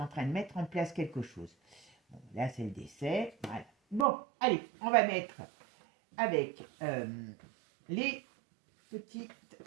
en train de mettre en place quelque chose. Bon, là, c'est le décès, voilà. Bon, allez, on va mettre avec les petits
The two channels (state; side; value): drops out; left; at 4.0 s